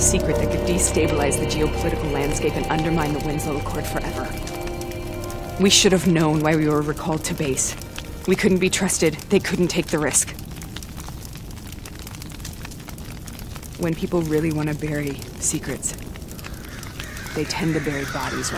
that could destabilize the geopolitical landscape and undermine the Winslow Accord forever. We should have known why we were recalled to base. We couldn't be trusted. They couldn't take the risk. When people really want to bury secrets, they tend to bury bodies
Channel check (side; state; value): both; identical; correlation 1.00